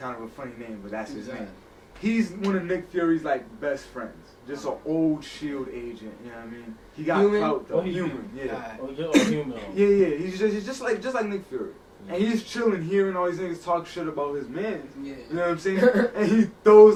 of a funny name, but that's his name. He's one of Nick Fury's like best friends. Just an old SHIELD agent, you know what I mean? He got clout though. Human, yeah. Human. Yeah. He's just like Nick Fury. And he's chilling, hearing all these niggas talk shit about his man. You know what I'm saying? And he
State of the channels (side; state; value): both; identical; correlation 1.00